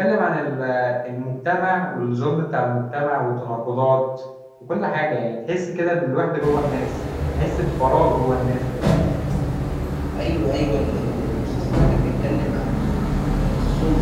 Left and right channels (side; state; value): both; identical; correlation 1.00